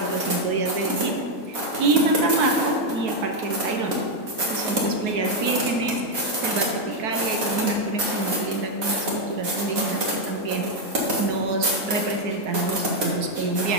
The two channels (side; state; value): left; late; 4.2 ms